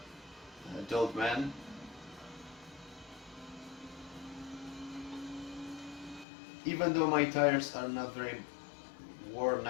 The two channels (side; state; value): right; drops out; at 6.2 s